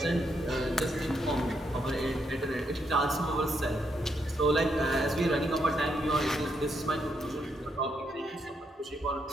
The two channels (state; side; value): normal; both; correlation 0.78